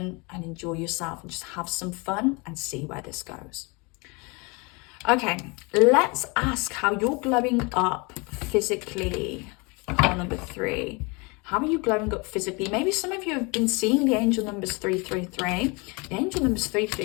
and enjoy yourself and just have some fun and see where this goes. Okay, let's ask how you're glowing up physically. Pile number 3. How are you glowing up physically? Maybe some of you have been seeing the angel numbers 333. The angel numbers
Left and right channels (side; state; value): right; quieter; 28.9 dB